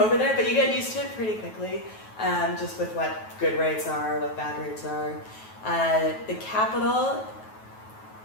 over there, but you get used to it pretty quickly. Just with what good rates are, what bad rates are. The capital,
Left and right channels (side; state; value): right; late; 9.3 ms